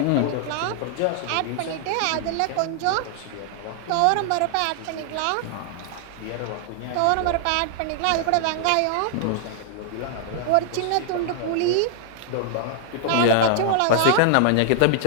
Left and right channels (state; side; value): different; both; correlation -0.01